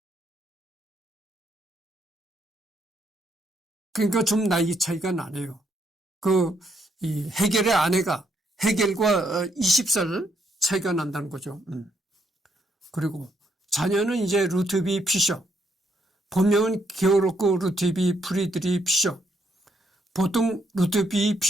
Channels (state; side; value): normal; both; correlation 0.75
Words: 그러니까 좀 나이 차이가 나네요. 이 헤겔의 아내가 헤겔과 20살 차이가 난다는 거죠. 그리고 자녀는 이제 루트비 피셔, 본명은 게오르크 루트비 프리드리 피셔, 보통 루트비